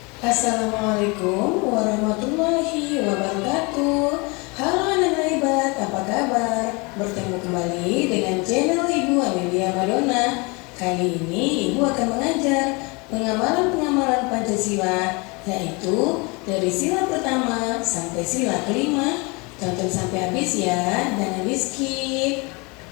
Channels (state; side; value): quieter; right; 28.5 dB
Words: Assalamualaikum warahmatullahi wabarakatuh. Halo anak hebat, apa kabar? Bertemu kembali dengan channel Ibu Amelia Madonna. Kali ini Ibu akan mengajar pengamalan Pancasila, yaitu dari sila pertama sampai sila kelima. Tonton sampai habis ya, jangan di skip.